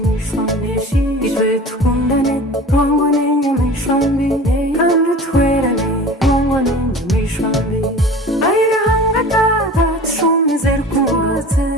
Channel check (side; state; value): both; normal; correlation 0.39